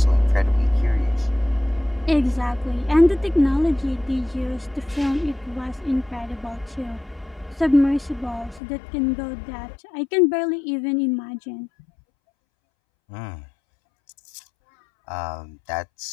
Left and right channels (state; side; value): drops out; right; at 8.6 s